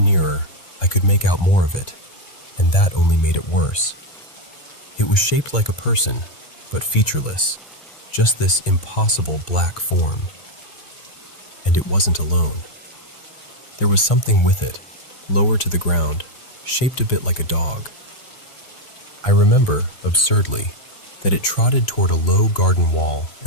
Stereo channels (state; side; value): late; right; 1.5 ms